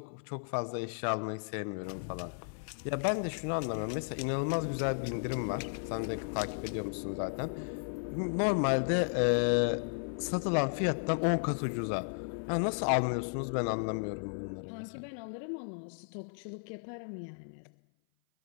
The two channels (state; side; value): silent; right; 55 dB below the other